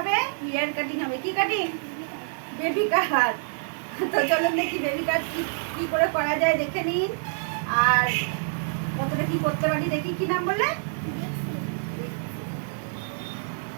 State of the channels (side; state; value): left; silent; digital silence